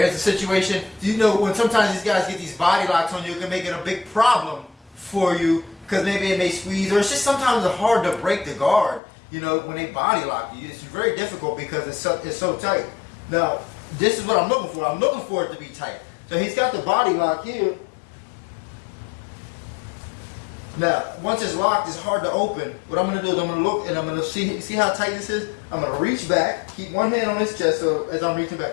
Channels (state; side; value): drops out; right; at 9.0 s